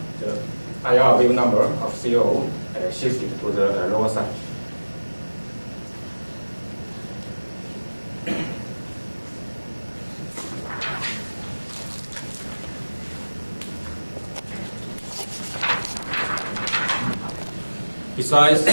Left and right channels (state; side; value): inverted; both; correlation -1.00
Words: the IR wave number of CO shifted to the lower side. Besides